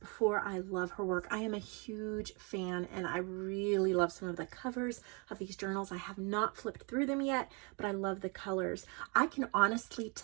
I love her work. I am a huge fan and I really love some of the covers of these journals. I have not flipped through them yet, but I love the colors. I can honestly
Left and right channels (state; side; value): quieter; left; 33.0 dB